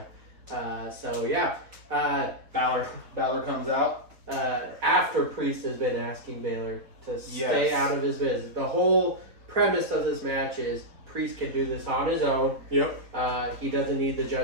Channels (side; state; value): left; late; 4.3 ms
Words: Balor comes out after Priest has been asking Baylor to stay out of his business. The whole premise of this match is Priest can do this on his own. Yep. He doesn't need the